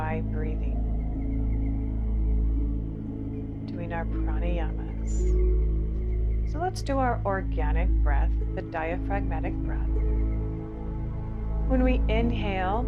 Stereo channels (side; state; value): both; identical; correlation 1.00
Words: breathing, doing our pranayamas. So let's do our organic breath, the diaphragmatic breath. When we inhale,